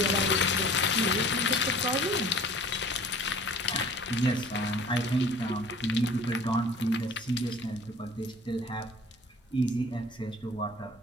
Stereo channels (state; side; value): normal; both; correlation 0.47